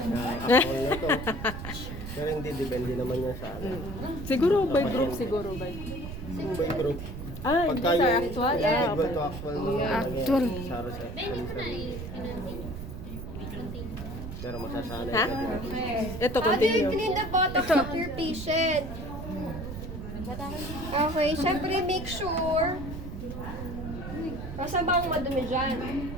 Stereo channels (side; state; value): right; noise; rumble, 8 dB below the sound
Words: na to. Pero hindi, depende naman yan sa ano. Siguro by group, siguro by. By group. Ah, hindi Pagka sa yung actual. equal to actual mga Actual. Saro sa Hindi ko na i-continue. Pero masasanay Ha? ka din. Okay. Ito, How do you continue. clean the botox of your patient? Okay, syempre make sure. Kasi bang madumi dyan?